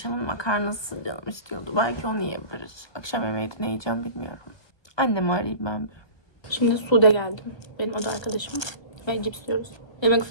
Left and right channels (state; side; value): late; right; 1.3 ms